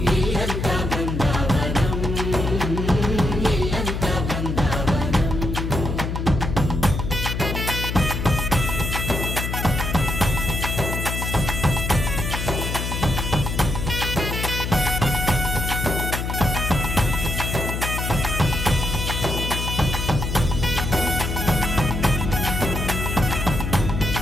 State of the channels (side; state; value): left; noise; hum, 3 dB below the sound